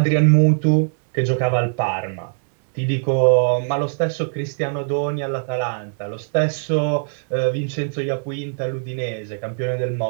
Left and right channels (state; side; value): silent; left; 65 dB below the other